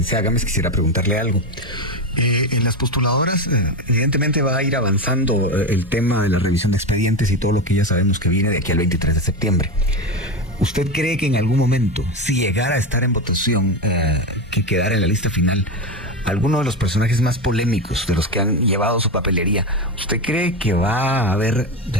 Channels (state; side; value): normal; both; correlation 0.17